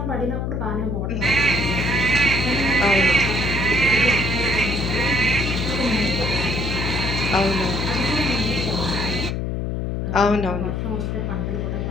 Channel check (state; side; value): noise; left; hum, 1 dB below the sound